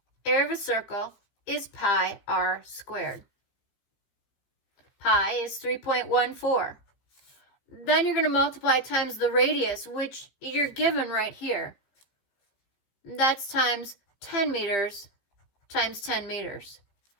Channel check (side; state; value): right; late; 15 ms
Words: Area of a circle is pi r squared. Pi is 3.14. Then you're going to multiply times the radius, which you're given right here. That's times 10 meters times 10 meters.